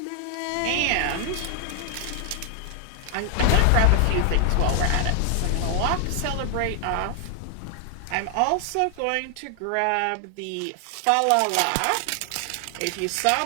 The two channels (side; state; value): both; different; correlation 0.00